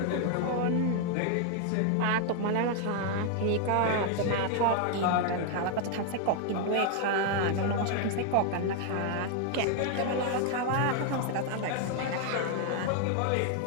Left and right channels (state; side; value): different; both; correlation 0.00